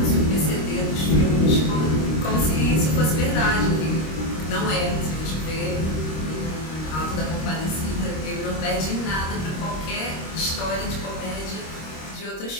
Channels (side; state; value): right; late; 26 ms